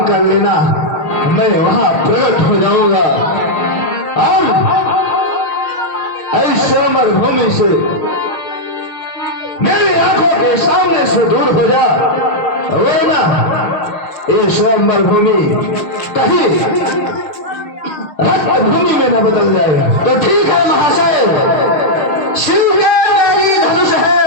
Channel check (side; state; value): right; late; 6.6 ms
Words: कर लेना, मैं वहां प्रकट हो जाऊंगा और ऐसे अमर भूमि से मेरी आंखों के सामने से दूर हो जा, वो ना ये स्वयंवर भूमि कहीं रक्त भूमि में न बदल जाएगा। तो ठीक है महाशय, शिव के मेरी धनुष